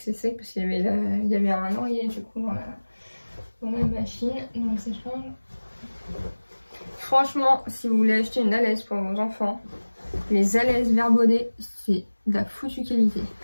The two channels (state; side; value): inverted; both; correlation -1.00